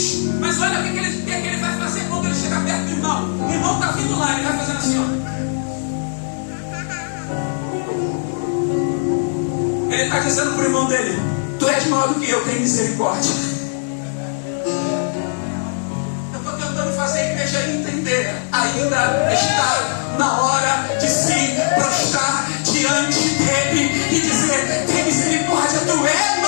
Mas olha o que ele vai fazer quando ele chega perto do irmão. O irmão está vindo lá, ele vai fazendo assim, ó. Ele está dizendo para o irmão dele: tu és maior do que eu, tenho misericórdia. Eu estou tentando fazer a igreja entender. Ainda está na hora de se prostrar diante dele e dizer: tem misericórdia, tu és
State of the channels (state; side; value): silent; right; digital silence